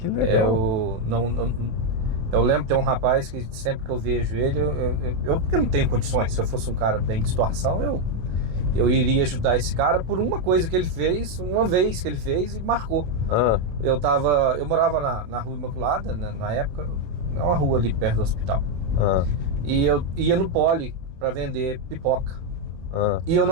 legal. Eu lembro, tem um rapaz que sempre que eu vejo ele, porque não tenho condições, se eu fosse um cara bem de situação, eu iria ajudar esse cara por uma coisa que ele fez, uma vez que ele fez e marcou. Eu morava na Rua Imaculada, na época, é uma rua ali perto do hospital. E eu ia no Poli para vender pipoca. E eu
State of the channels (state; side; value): late; left; 27 ms